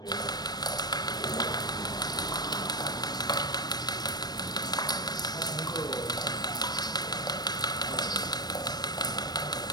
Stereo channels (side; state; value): right; late; 0.19 ms